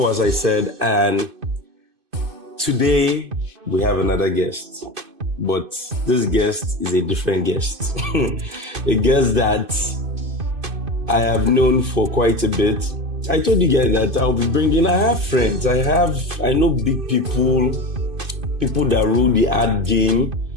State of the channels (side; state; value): left; late; 2.5 ms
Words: as I said, and today we have another guest. But this guest is a different guest. A guest that I have known for quite a bit. I told you guys that I'll be bringing, I have friends, I know big people that rule the ad game.